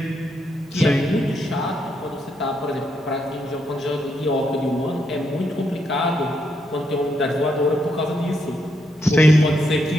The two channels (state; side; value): normal; both; correlation 0.79